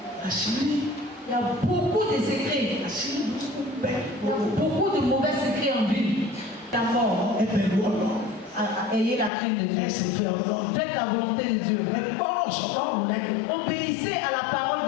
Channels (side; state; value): right; drops out; at 9.3 s